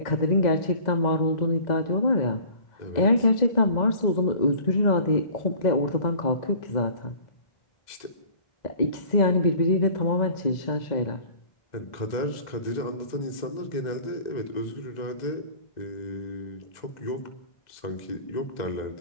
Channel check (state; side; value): late; right; 2.0 ms